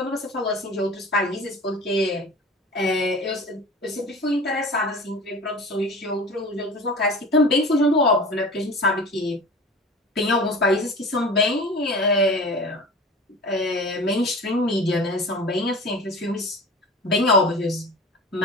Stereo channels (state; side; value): normal; both; correlation 0.37